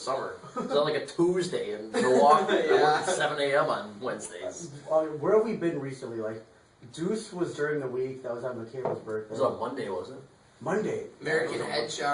It's on like a Tuesday in Milwaukee. I work Yeah. at 7 a.m. on Wednesdays. Where have we been recently? Like, Deuce was during the week. That was on Michaela's birthday. It was on Monday, wasn't it? Monday. American Head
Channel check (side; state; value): both; identical; correlation 1.00